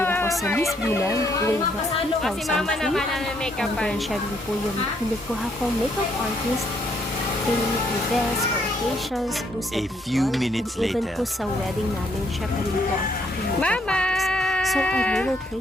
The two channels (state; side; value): normal; both; correlation 0.71